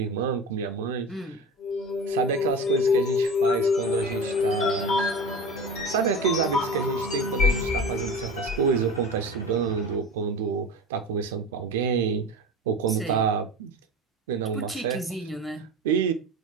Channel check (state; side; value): normal; both; correlation 0.31